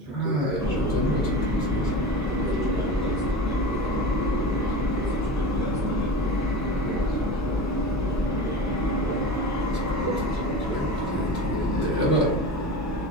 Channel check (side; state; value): both; normal; correlation 0.30